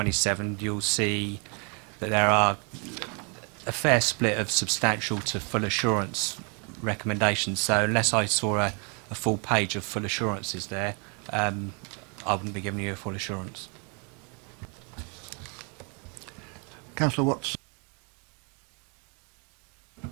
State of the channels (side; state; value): left; quieter; 35.3 dB